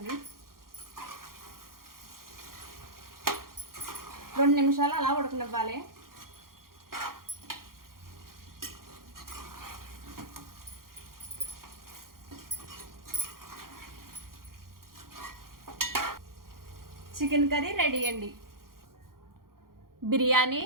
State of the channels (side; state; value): left; late; 0.92 ms